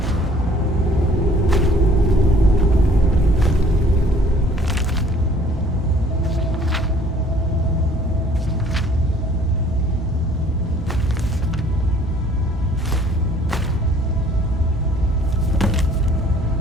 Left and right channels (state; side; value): normal; both; correlation 0.57